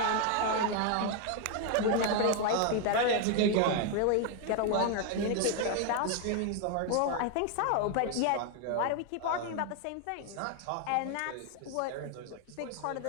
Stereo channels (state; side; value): different; both; correlation 0.00